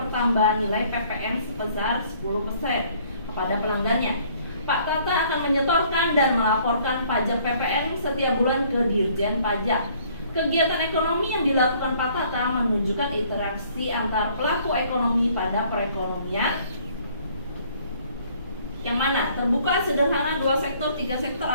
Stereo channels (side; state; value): both; inverted; correlation -0.60